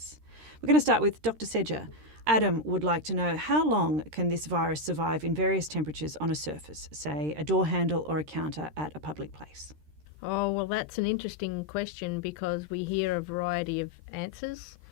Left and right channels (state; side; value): late; left; 13 ms